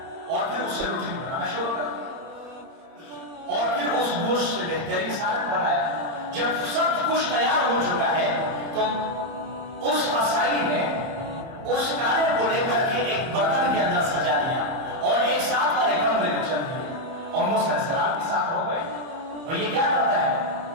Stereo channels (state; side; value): late; left; 30 ms